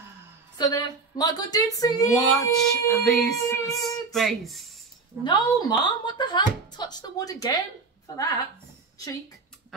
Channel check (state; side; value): quieter; left; 4.4 dB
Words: So there, my good dude, see Watch this space. No, Mom, what the hell? Touch the wood again for that. Cheek.